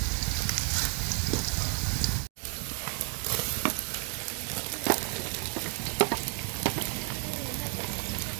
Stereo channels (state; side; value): quieter; left; 38.2 dB